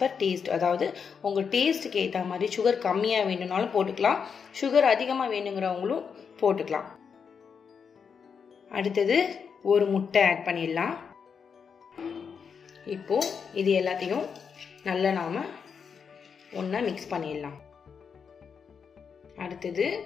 பர் டேஸ்ட், அதாவது உங்கள் டேஸ்ட்டுக்கு ஏற்ற மாதிரி சுகர் கம்மியாக வேணும்னாலும் போட்டுக்கலாம், சுகர் அதிகமாக வேணுங்கிறவங்களும் போட்டுக்கலாம். அடுத்தது ஒரு முட்டை ஆட் பண்ணிடலாம். இப்போ இது எல்லாத்தையும் நல்லா நாம ஒன்றா மிக்ஸ் பண்ணிடலாம். அடுத்தது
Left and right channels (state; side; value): quieter; right; 6.4 dB